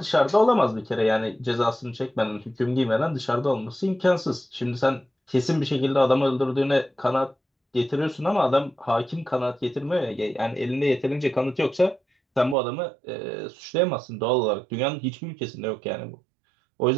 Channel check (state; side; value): drops out; left; at 12.6 s